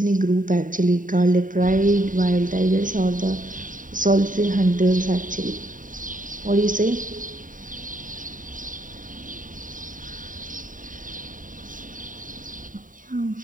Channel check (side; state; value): left; late; 0.39 ms